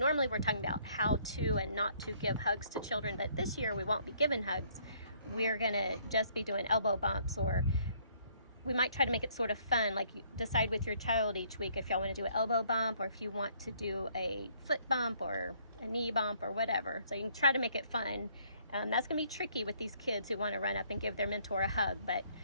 we're talking about how to and not to give hugs to children, but this year we won't be giving hugs. we're going to just be doing elbow bumps, or we might try to make it sort of fun. Like, you decide with your child each week if y'all want to do an elbow bump, or if you want to do a foot bump or a knee bump or whatever. So you can try to make it fun. That's going to be tricky with these kids who want to run up and give their mentor a hug, but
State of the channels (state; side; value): inverted; both; correlation -0.64